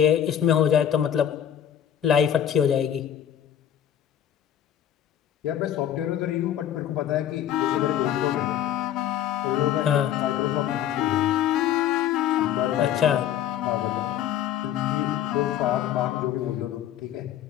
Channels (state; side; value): quieter; right; 10.4 dB